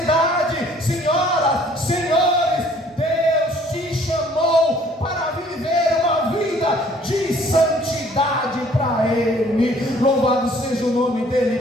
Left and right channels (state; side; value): normal; both; correlation 0.58